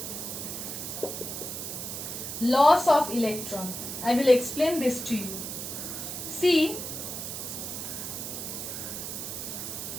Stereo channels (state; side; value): noise; right; hiss, 6 dB below the sound